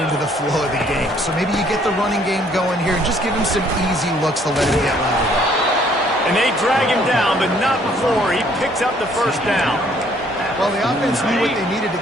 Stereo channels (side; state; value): both; normal; correlation 0.63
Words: into the flow of the game. So maybe you get the running game going here and just give him some easy looks to let him get louder. And they drag him down, but not before he picks up the first down. Well, the offense knew what they needed